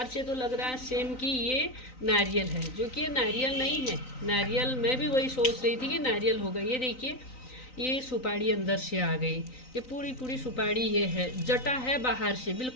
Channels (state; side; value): late; right; 3.9 ms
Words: से तो लग रहा है सेम कि ये नारियल है, जो कि ये नारियल नहीं है। नारियल मैं भी वही सोच रही थी कि नारियल होगा। ये देखिए, ये सुपारी अंदर से आ गई। ये पूरी पूरी सुपारी ये है। जटा है बाहर से,